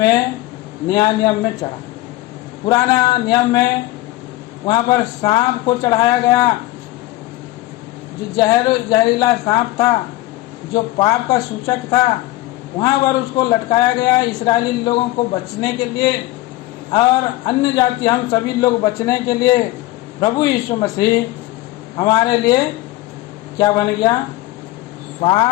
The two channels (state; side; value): quieter; right; 17.9 dB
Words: नया नियम में चढ़ा। पुराना नियम में वहाँ पर सांप को चढ़ाया गया, जो जहरीला सांप था, जो पाप का सूचक था, वहाँ पर उसको लटकाया गया इस्राएली लोगों को बचने के लिए, और अन्य जाति हम सभी लोग बचने के लिए प्रभु यीशु मसीह हमारे लिए क्या बन गया?